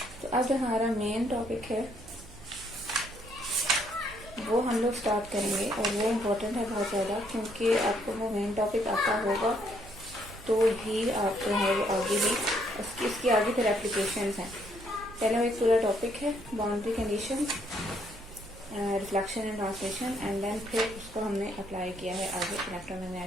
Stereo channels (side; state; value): right; noise; hum, 19 dB below the sound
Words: तो अब जो हमारा मेन टॉपिक है वो हम लोग स्टार्ट करेंगे और वो इम्पोर्टेंट है बहुत ज़्यादा, क्योंकि आपको वो मेन टॉपिक आता होगा तो ही आप जो है वो आगे भी इसकी आगे फिर एप्लीकेशंस हैं. पहले वो एक पूरा टॉपिक है boundary condition, reflection and translation, and then फिर उसको हमने अप्लाई किया है आगे